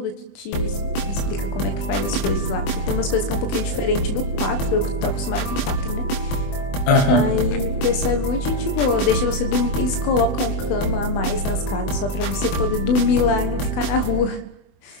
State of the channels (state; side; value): late; right; 20 ms